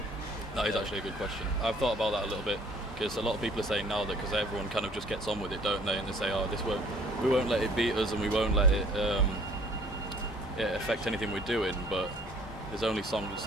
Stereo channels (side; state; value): both; normal; correlation 0.55